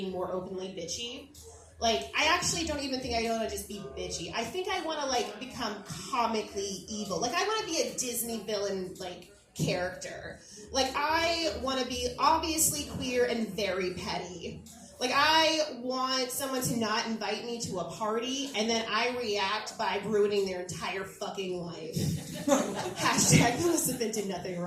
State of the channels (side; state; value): both; identical; correlation 1.00